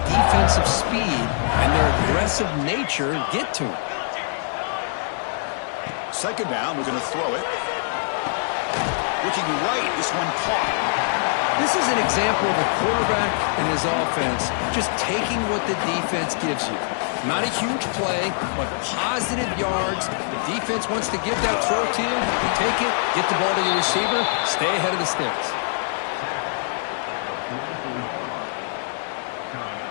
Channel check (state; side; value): silent; right; digital silence